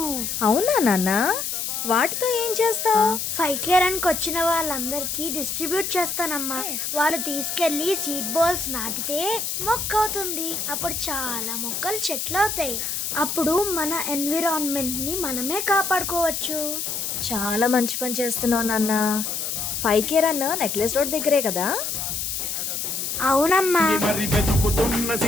అవునా నాన్న? వాటితో ఏం చేస్తావు? 5K రన్ కి వచ్చిన వాళ్ళందరికీ డిస్ట్రిబ్యూట్ చేస్తానమ్మా. వాళ్ళు తీసుకెళ్లి సీడ్ బాల్స్ నాటితే మొక్క అవుతుంది. అప్పుడు చాలా మొక్కలు చెట్లు అవుతాయి. అప్పుడు మన ఎన్విరాన్మెంట్ ని మనమే కాపాడుకోవచ్చు. చాలా మంచి పని చేస్తున్నావు నాన్న. 5K రన్ నెక్లెస్ రోడ్ దగ్గరే కదా? అవునమ్మా. మరి వెతుకుతున్న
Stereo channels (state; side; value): noise; left; hiss, 3 dB below the sound